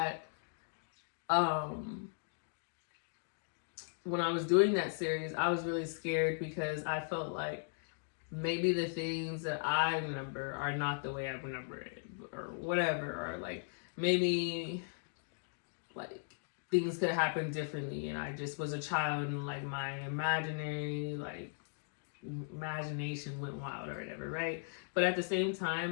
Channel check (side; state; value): right; silent; digital silence